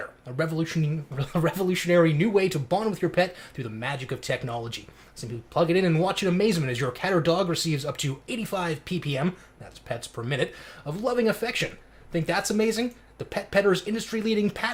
a revolutionary new way to bond with your pet through the magic of technology. Simply plug it in and watch in amazement as your cat or dog receives up to 85 ppm, that's pets per minute, of loving affection. Think that's amazing? The Pet Petter's industry-leading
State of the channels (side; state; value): both; identical; correlation 1.00